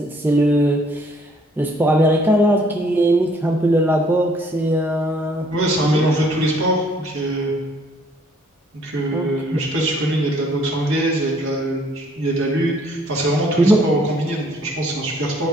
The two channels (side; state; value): both; normal; correlation 0.62